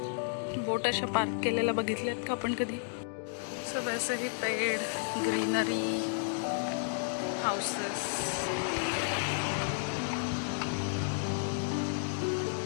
Boat अशा पार्क केलेल्या बघितल्यात का आपण कधी? सो वैसे ही पेड़, ग्रीनरी, हाउसेस.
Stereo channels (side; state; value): right; silent; digital silence